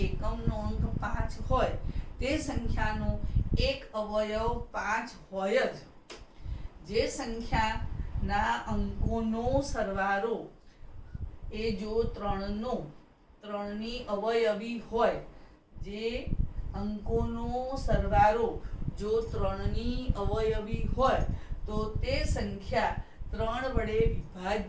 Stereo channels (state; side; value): identical; both; correlation 1.00